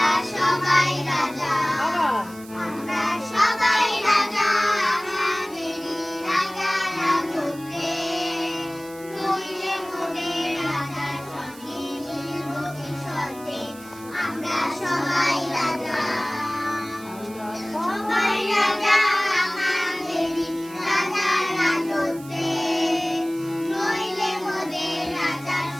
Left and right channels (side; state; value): right; noise; hiss, 20 dB below the sound